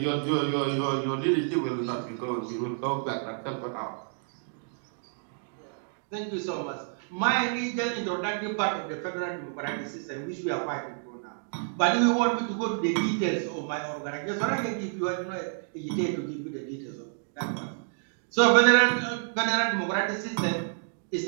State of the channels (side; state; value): left; silent; digital silence